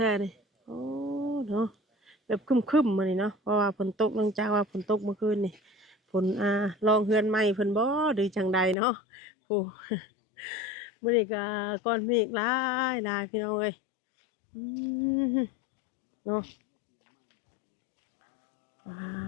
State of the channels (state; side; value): drops out; right; at 8.8 s